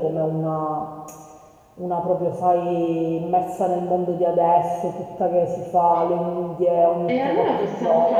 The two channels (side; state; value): both; identical; correlation 1.00